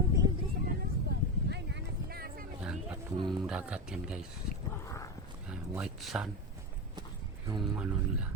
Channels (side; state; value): both; normal; correlation 0.16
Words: Yan, patong dagat yan guys. Yan, white sand. Yung ano nila,